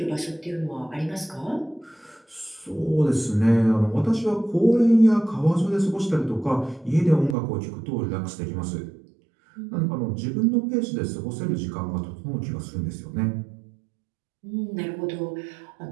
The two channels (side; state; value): left; drops out; at 7.4 s